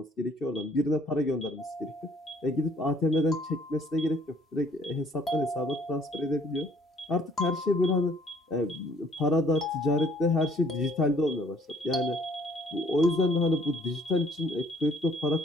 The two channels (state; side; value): normal; both; correlation 0.60